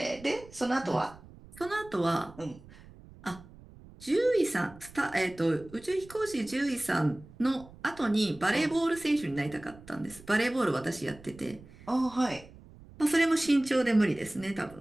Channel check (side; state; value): right; noise; rumble, 21 dB below the sound